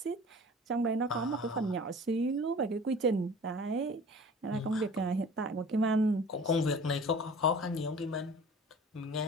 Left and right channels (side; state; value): both; normal; correlation 0.43